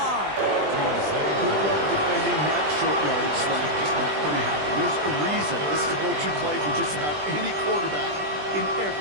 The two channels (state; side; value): late; left; 20 ms